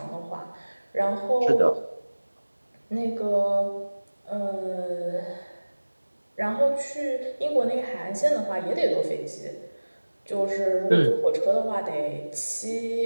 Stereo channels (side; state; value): both; inverted; correlation -1.00